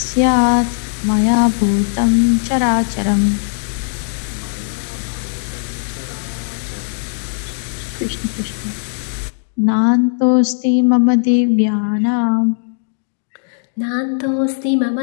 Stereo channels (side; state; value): right; silent; digital silence